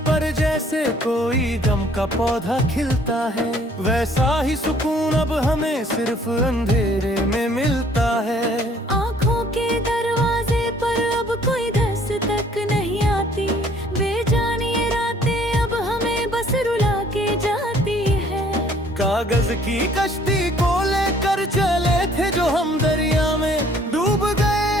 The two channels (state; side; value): normal; both; correlation 0.59